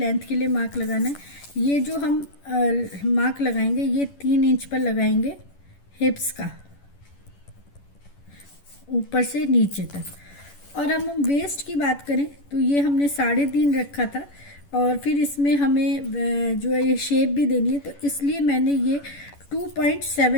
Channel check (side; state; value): right; late; 11 ms